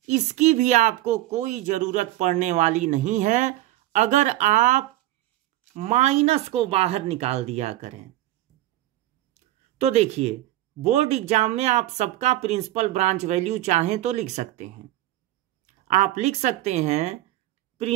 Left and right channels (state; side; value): quieter; left; 15.4 dB